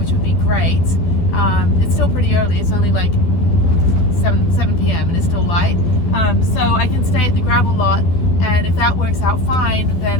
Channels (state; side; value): late; right; 12 ms